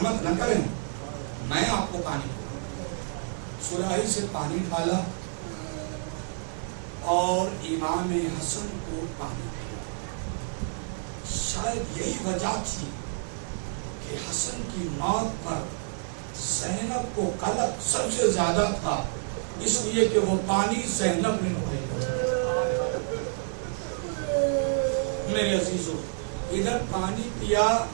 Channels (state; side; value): silent; left; 59 dB below the other